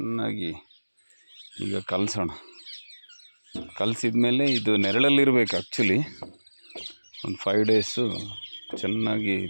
ಈಗ ಕಲಸೋಣ. ಕಲಸಿದ ಮೇಲೆ ಇದು ನೆರಳಲ್ಲಿರಬೇಕು ಆ್ಯಕ್ಚುಲಿ. ಒಂದು 5 ಡೇಸು ಚೆನ್ನಾಗಿ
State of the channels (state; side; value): inverted; both; correlation -1.00